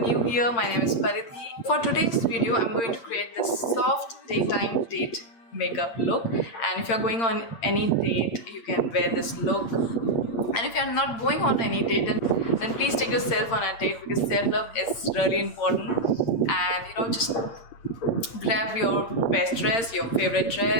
here, my name is Paridhi. For today's video, I'm going to create this soft daytime date makeup look, and if you're going on any date, you can wear this look. And if you're not going on any date, then please take yourself on a date, because self-love is really important. And just grab your best dress, your favorite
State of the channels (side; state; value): right; late; 8.8 ms